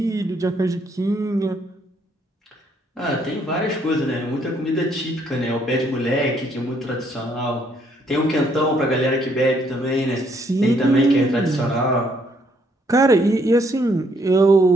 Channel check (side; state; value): both; normal; correlation 0.69